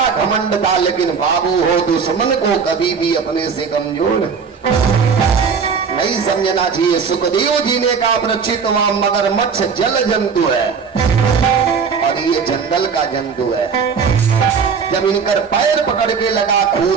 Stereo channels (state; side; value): quieter; left; 5.9 dB